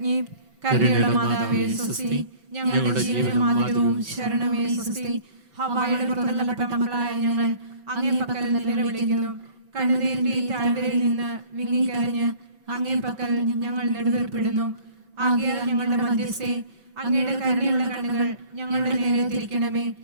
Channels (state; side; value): late; left; 5.3 ms